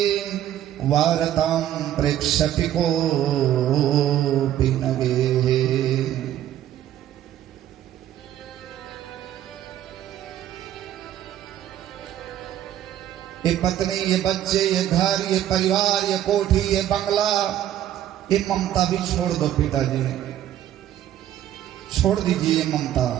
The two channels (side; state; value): left; quieter; 11.8 dB